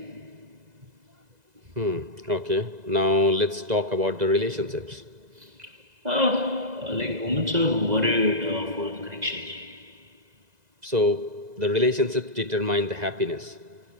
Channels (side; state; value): left; late; 2.0 ms